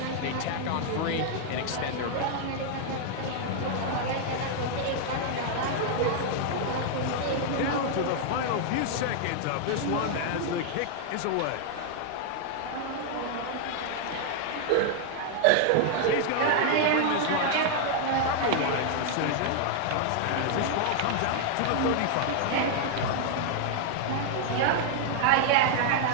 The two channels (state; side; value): different; both; correlation 0.00